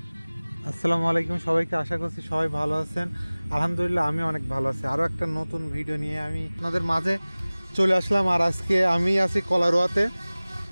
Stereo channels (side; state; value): both; inverted; correlation -0.99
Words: আসসালামু আলাইকুম সবাইকে, আশা করছি সবাই ভালো আছেন। আলহামদুলিল্লাহ আমি অনেক ভালো আছি। আরও একটা নতুন ভিডিও নিয়ে আমি আপনাদের মাঝে চলে আসলাম। আর আজকে আমি আছি কলারোয়াতে।